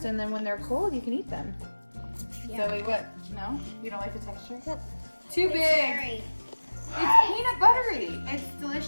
And then when they're cold, you can eat them. Yeah. Zoe, what? No, you don't like the texture? Too big. It's peanut buttery. It's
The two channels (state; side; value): inverted; both; correlation -1.00